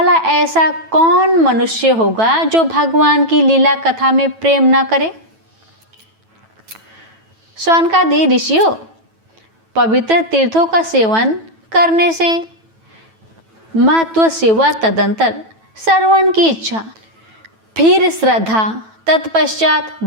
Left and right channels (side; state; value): left; late; 9.1 ms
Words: ऐसा कौन मनुष्य होगा जो भगवान की लीला कथा में प्रेम न करे। शौनकादि ऋषियों, पवित्र तीर्थों का सेवन करने से महत्व सेवा, तदंतर श्रवण की इच्छा, फिर श्रद्धा, तत्पश्चात